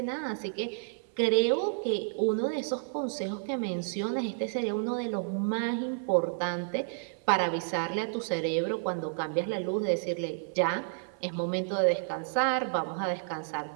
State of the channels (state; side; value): silent; left; 57 dB below the other